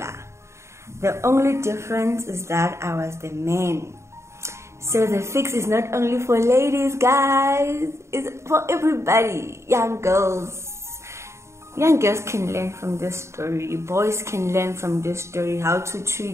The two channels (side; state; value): left; late; 0.14 ms